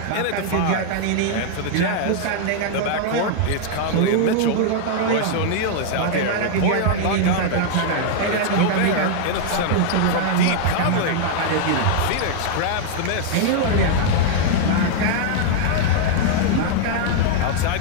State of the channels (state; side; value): different; both; correlation -0.01